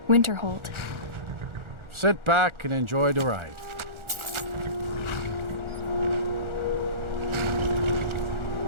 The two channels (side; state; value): left; late; 1.4 ms